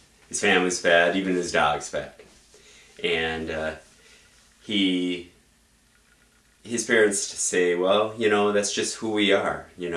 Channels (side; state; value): both; identical; correlation 1.00